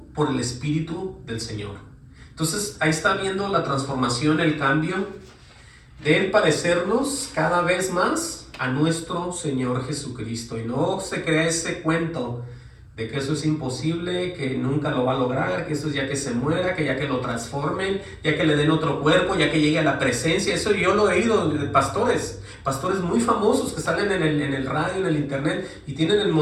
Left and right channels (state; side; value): identical; both; correlation 1.00